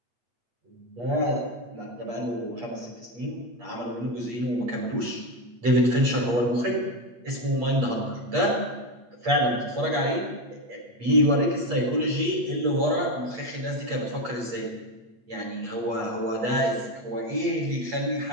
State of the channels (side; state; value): left; late; 8.5 ms